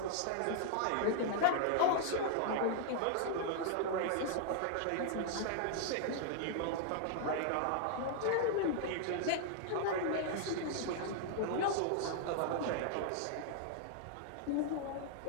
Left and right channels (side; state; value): both; different; correlation -0.01